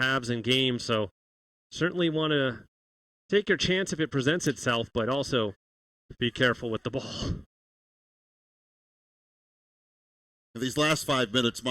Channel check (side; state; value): both; normal; correlation 0.96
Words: and games, so certainly want to take your chance if it presents itself, but also be careful with the ball. These last 5 minutes,